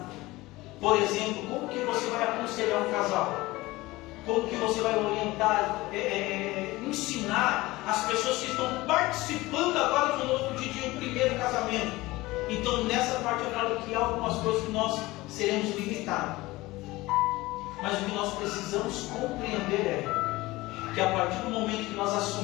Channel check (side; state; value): right; quieter; 19.8 dB